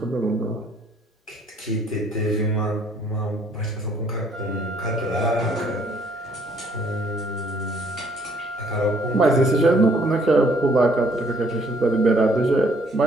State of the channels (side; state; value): both; normal; correlation 0.64